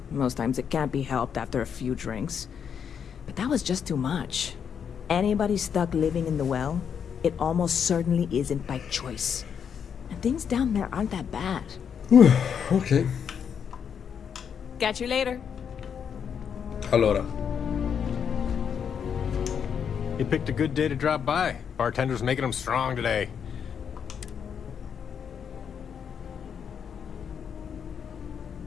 Most times it can't be helped after a few drinks. But that was just too much. Anybody stuck living in the well, it almost certainly isn't by choice. And things down there aren't that bad. Ok. Catch you later. Allora. You picked a good day to drop by. Bartender's making them strong today.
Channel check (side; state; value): right; quieter; 7.5 dB